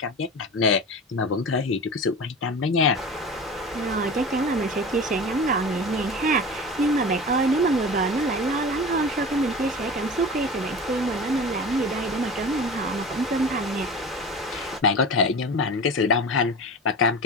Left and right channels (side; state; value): both; normal; correlation 0.32